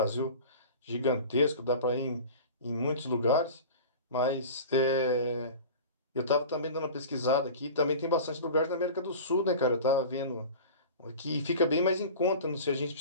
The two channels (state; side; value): inverted; both; correlation -0.36